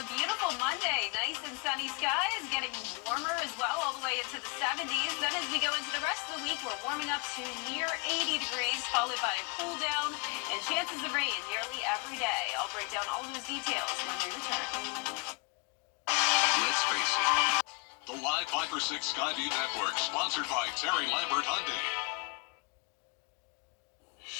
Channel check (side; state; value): right; quieter; 30.2 dB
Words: beautiful Monday. Nice and sunny skies, getting warmer as well, all the way into the 70s. Then as we go into the rest of the week, we're warming up to near 80 degrees, followed by a cool down and chances of rain nearly every day. I'll break down all those details when we return. Let's face it. The Live Viper 6 Skyview Network, sponsored by Terry Lambert Hyundai.